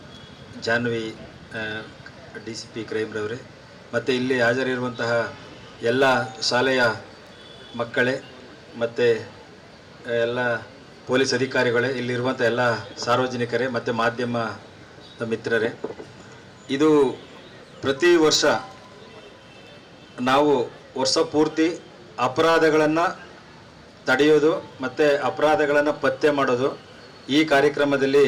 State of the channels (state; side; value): identical; both; correlation 1.00